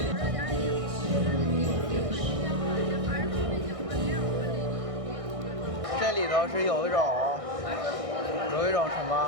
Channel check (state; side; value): late; left; 1.6 ms